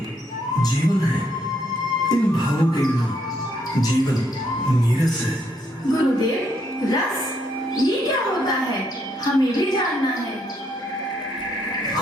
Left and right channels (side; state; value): both; normal; correlation 0.73